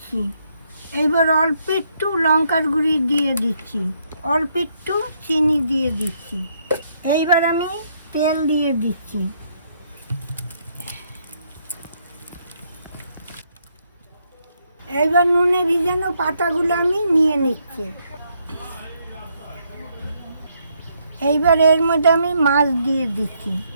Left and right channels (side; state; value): both; inverted; correlation -0.74